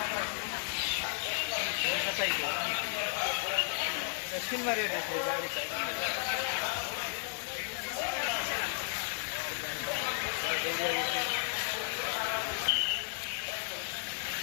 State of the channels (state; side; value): silent; right; digital silence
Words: दक्षिण में रेट है गाड़ी का